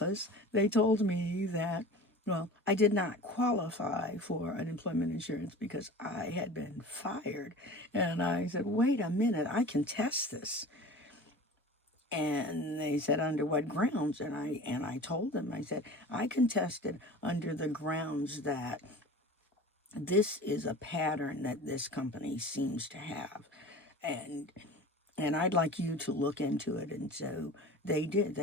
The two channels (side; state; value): both; normal; correlation 0.38